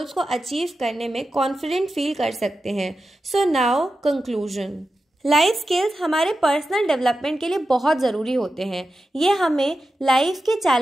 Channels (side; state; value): both; normal; correlation 0.91